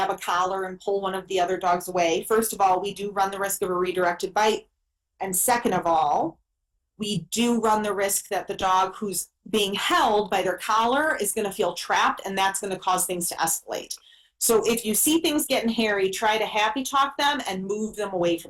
a collar and pull one of the other dogs away, first of all, we do run the risk of a redirected bite. And second of all, we do run the risk that the dog who's being held by their collar is going to feel trapped, and that's going to cause things to escalate. So if you see things getting hairy, try to happy talk them and move them away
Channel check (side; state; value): both; identical; correlation 1.00